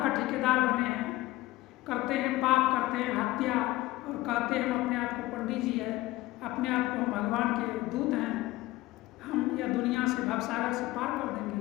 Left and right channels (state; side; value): quieter; right; 18.2 dB